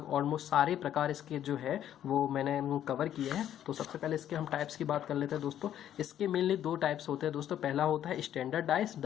ऑलमोस्ट सारे प्रकार इसके जो है वो मैंने कवर किए हैं। तो सबसे पहले इसके हम टाइप्स की बात कर लेते हैं दोस्तों। इसके मेनली 2 टाइप्स होते हैं दोस्तों। पहला होता है स्टैंडर्ड डाइस,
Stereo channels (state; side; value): quieter; right; 10.8 dB